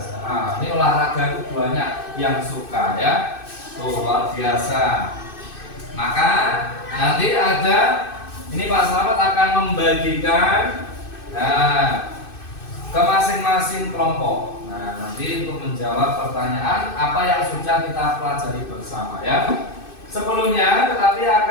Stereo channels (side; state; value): right; late; 2.6 ms